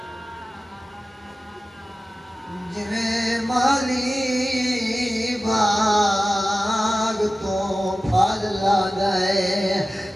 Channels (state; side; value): normal; both; correlation 0.95